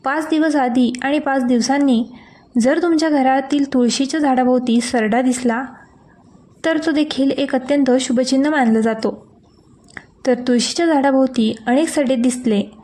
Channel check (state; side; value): identical; both; correlation 1.00